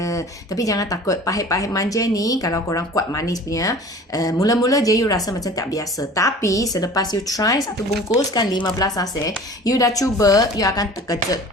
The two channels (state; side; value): normal; both; correlation 0.43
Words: Tapi jangan takut, pahit-pahit manja ni kalau korang kuat manis punya, mula-mula je you rasa macam tak biasa. Tapi selepas you try satu bungkus kan 15 sachet, you dah cuba, you akan terkejut.